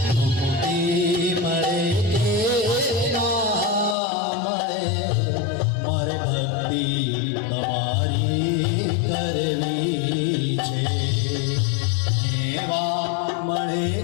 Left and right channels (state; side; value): drops out; right; at 4.0 s